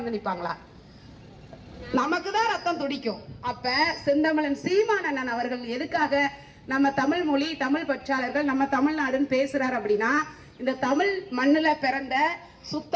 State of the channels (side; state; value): both; identical; correlation 1.00